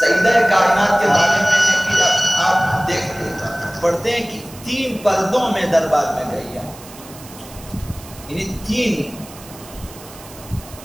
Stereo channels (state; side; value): noise; right; hiss, 19 dB below the sound